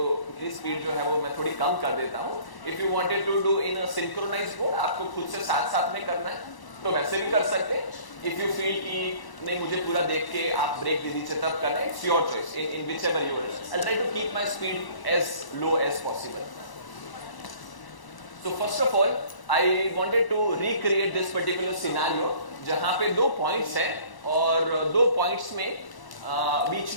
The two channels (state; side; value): late; right; 1.0 ms